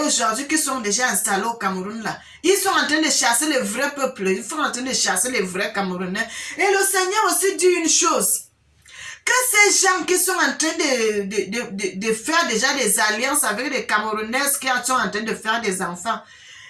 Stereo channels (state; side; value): identical; both; correlation 1.00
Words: qui sont déjà installés au Cameroun là, ils sont en train de chasser le vrai peuple, ils sont en train de chasser les vrais Camerounais. Et le Seigneur aussi dit une chose, que ces gens qui sont en train de faire déjà des alliances avec les Camerounaises qui sont en train de faire des enfants,